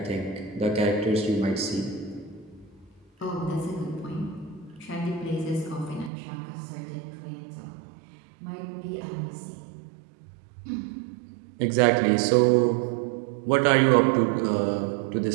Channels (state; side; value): drops out; left; at 6.1 s